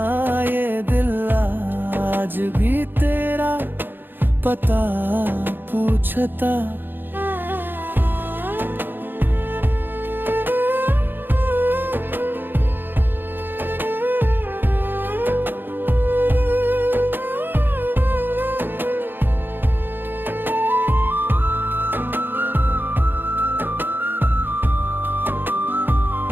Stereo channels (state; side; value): late; left; 0.097 ms